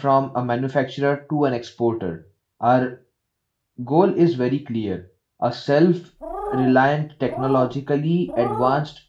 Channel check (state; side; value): identical; both; correlation 1.00